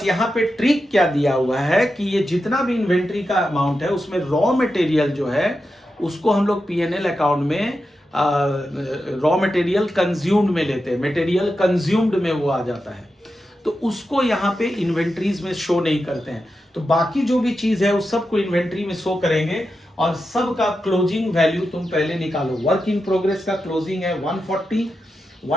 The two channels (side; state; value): both; normal; correlation 0.89